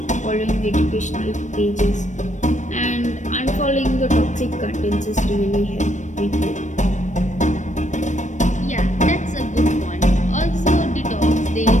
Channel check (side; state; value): right; late; 0.35 ms